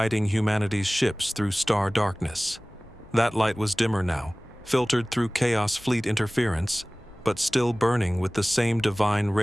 humanity's ships through star darkness. That light was dimmer now, filtered through Chaos Fleet interference, but still burning with the same divine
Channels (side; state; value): left; noise; hum, 27 dB below the sound